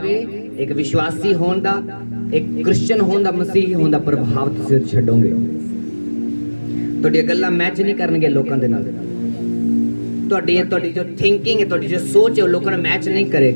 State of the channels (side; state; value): both; inverted; correlation -1.00